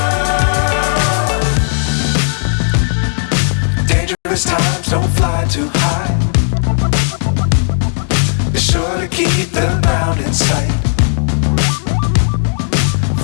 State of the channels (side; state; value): right; silent; 71 dB below the other